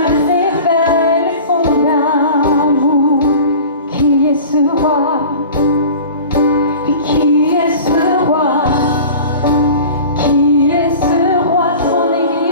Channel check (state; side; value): inverted; both; correlation -0.39